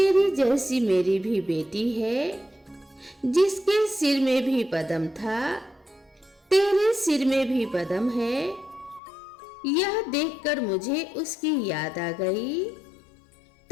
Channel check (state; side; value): drops out; right; at 9.0 s